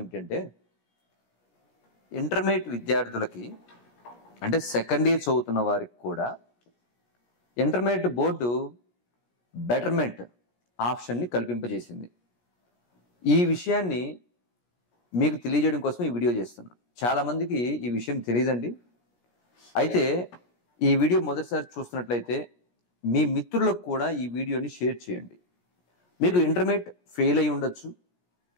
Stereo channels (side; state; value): right; late; 17 ms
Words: ఇంటర్మీడియట్ విద్యార్థులకి అంటే సెకండ్ ఇయర్ చదువుతున్న వారికి కూడా ఇంటర్మీడియట్ బోర్డు బెటర్మెంట్ ఆప్షన్ని కల్పింపజేసింది. ఈ విషయాన్ని మీకు తెలియజేయడం కోసం ఈ వీడియో చేస్తున్నాను. చాలామందికి ఈ విషయం తెలియదండి. అయితే ఈ వీడియో మొదటిసారి చూస్తున్నట్లయితే మీ మిత్రులకు కూడా ఈ వీడియోని షేర్ చేయండి. మీకు ఇంటర్మీడియట్ ఫెయిల్ అయి ఉండొచ్చు,